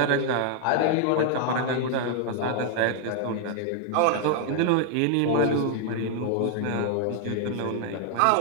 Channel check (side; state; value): both; different; correlation 0.00